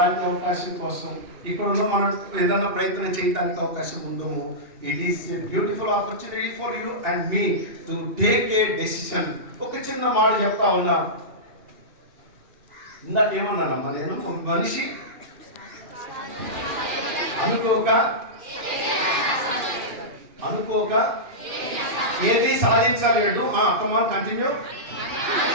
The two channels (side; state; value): left; late; 2.4 ms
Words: అవకాశం కోసం ఇక్కడ మనం ఏదైనా ప్రయత్నం చేయడానికి అవకాశం ఉందో, it is a beautiful opportunity for you and me to take a decision. ఒక చిన్న మాట చెప్తా ఉన్నా, ఇందాక ఏమన్నానమ్మా నేను, ఒక మనిషి అనుకోక ఏది సాధించలేడు. కమాన్ కంటిన్యూ.